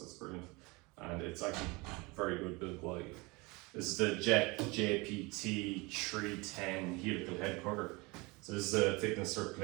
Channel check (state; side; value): quieter; left; 25.4 dB